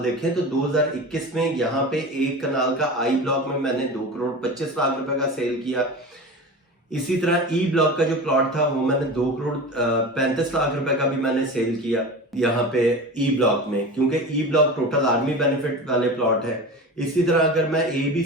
तो 2021 में यहाँ पे एक कनाल का आई ब्लॉक में मैंने 2 करोड़ 25 लाख रुपए का सेल किया। इसी तरह ई ब्लॉक का जो प्लॉट था वो मैंने 2 करोड़ 35 लाख रुपए का भी मैंने सेल किया यहाँ पे ई ब्लॉक में, क्योंकि E block total army benefit वाले प्लॉट है। इसी तरह अगर मैं ए बी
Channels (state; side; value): normal; both; correlation 0.31